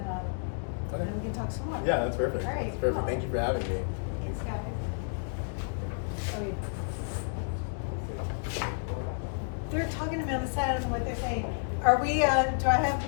we can talk some more. Yeah, that's perfect. All right, That's perfect. cool. Thank you for having me. Thanks, guys. They're talking about the side. I don't know what they're saying. Are we? Do I have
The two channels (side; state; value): right; silent; digital silence